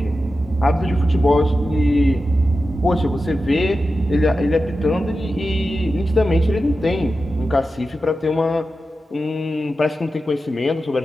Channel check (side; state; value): both; normal; correlation 0.92